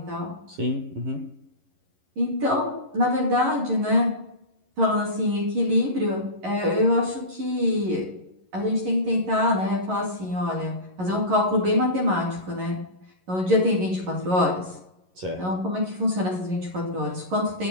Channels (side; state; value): left; late; 11 ms